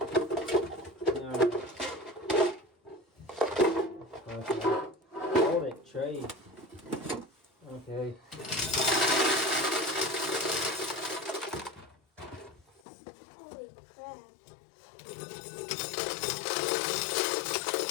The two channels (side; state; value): right; drops out; at 12.8 s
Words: Okay. Hold it, Trey. Okay. Holy crap.